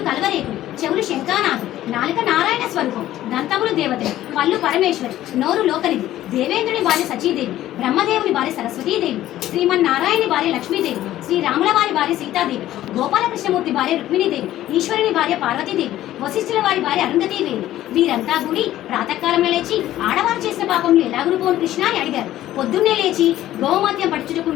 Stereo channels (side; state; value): right; quieter; 13.7 dB